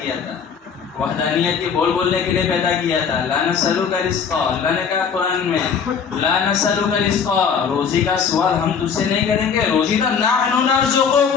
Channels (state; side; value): quieter; right; 6.5 dB